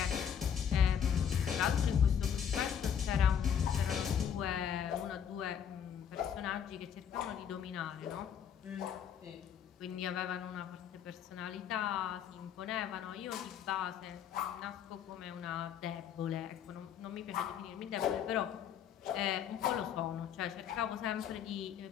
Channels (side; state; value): right; quieter; 8.4 dB